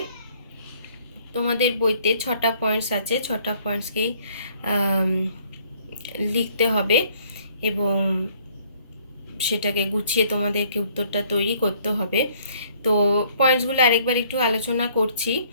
তোমাদের বইতে 6টা পয়েন্টস আছে, 6টা পয়েন্টসকেই লিখতে হবে এবং সেটাকে গুছিয়ে তোমাদেরকে উত্তরটা তৈরি করতে হবে। তো পয়েন্টসগুলো আরেকবার একটু আলোচনা করছি।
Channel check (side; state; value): both; inverted; correlation -0.61